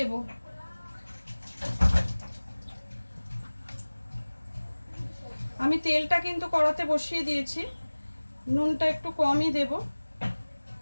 আমি তেলটা কিন্তু কড়াতে বসিয়ে দিয়েছি, নুনটা একটু কমই দেব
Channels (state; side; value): inverted; both; correlation -1.00